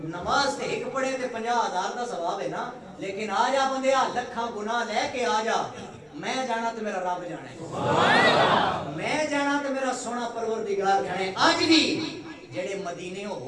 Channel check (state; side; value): identical; both; correlation 1.00